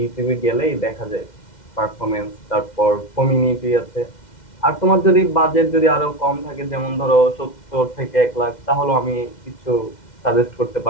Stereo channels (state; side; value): late; right; 2.1 ms